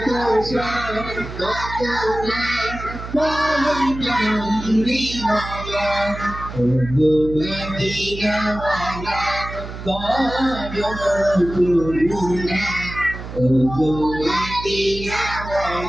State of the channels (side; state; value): right; noise; hum, 10 dB below the sound